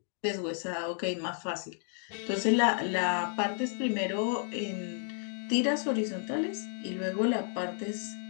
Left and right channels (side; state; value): right; silent; 56 dB below the other